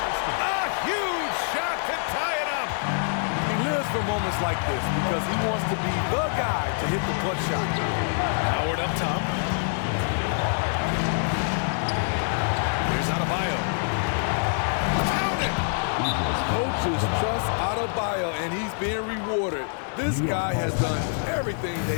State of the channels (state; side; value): silent; right; 59 dB below the other